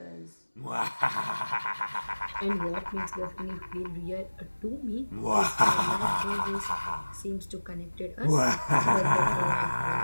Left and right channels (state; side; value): inverted; both; correlation -1.00